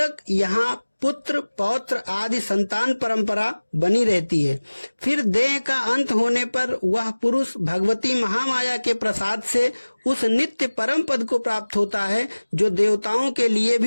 यहाँ पुत्र, पौत्र आदि संतान परंपरा बनी रहती है। फिर देह का अंत होने पर वह पुरुष भगवती महामाया के प्रसाद से उस नित्य परम पद को प्राप्त होता है जो देवताओं के लिए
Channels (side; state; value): both; inverted; correlation -1.00